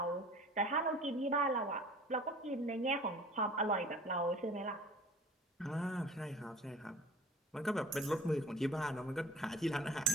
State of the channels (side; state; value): both; normal; correlation 0.45